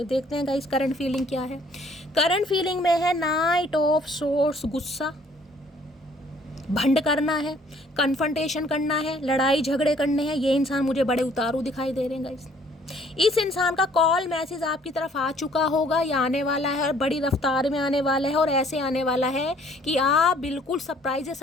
देखते हैं गाइस करंट फीलिंग क्या है। करंट फीलिंग में है नाइट ऑफ सोर्स, गुस्सा, भंड करना है, कन्फ्रंटेशन करना है, लड़ाई झगड़े करने हैं। ये इंसान मुझे बड़े उतारू दिखाई दे रहे हैं गाइस। इस इंसान का कॉल मैसेज आपकी तरफ आ चुका होगा या आने वाला है, और बड़ी रफ्तार में आने वाला है, और ऐसे आने वाला है कि आप बिल्कुल सरप्राइज है।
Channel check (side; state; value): both; normal; correlation 0.59